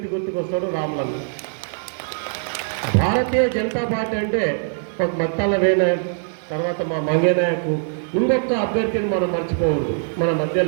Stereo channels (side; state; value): left; silent; 64 dB below the other